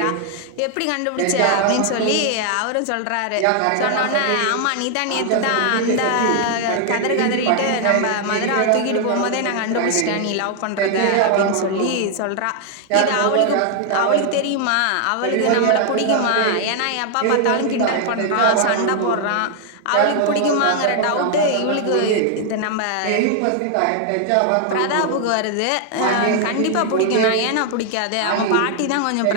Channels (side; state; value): both; different; correlation 0.00